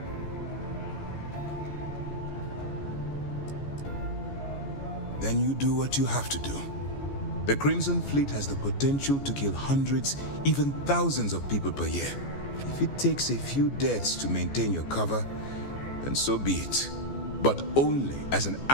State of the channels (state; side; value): late; right; 14 ms